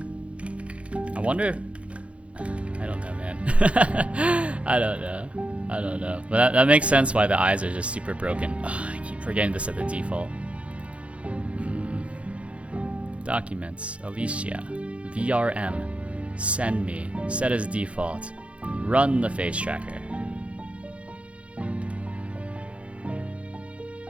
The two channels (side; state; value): left; late; 0.062 ms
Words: I wonder... I don't know, man. I don't know. But that makes sense why the eyes are just super broken. Ugh, I keep forgetting to set the default. Documents. Alicia. VRM. Send me. Set as default. Run the face tracker.